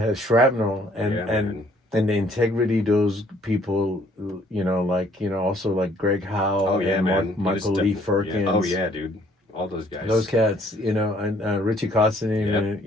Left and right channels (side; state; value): both; normal; correlation 0.62